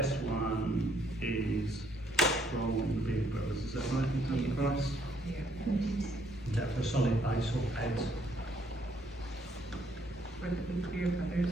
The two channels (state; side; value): normal; both; correlation 0.68